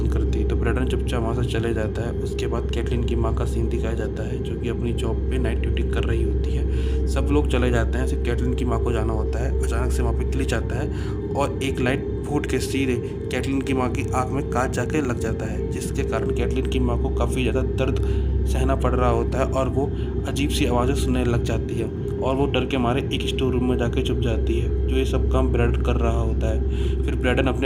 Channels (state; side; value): identical; both; correlation 1.00